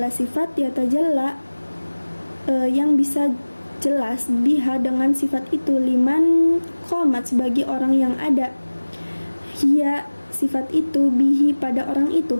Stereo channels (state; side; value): inverted; both; correlation -1.00